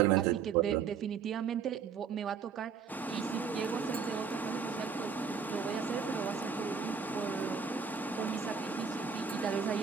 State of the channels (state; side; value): quieter; left; 6.3 dB